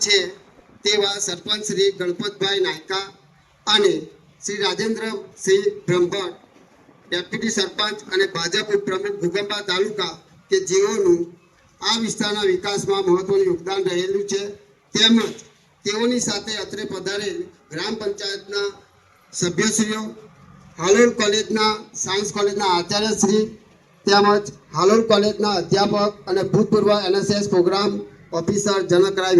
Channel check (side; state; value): both; identical; correlation 1.00